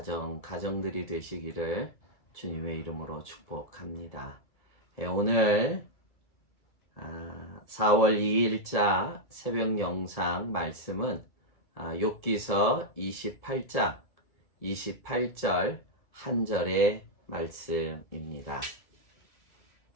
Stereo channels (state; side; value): late; right; 2.3 ms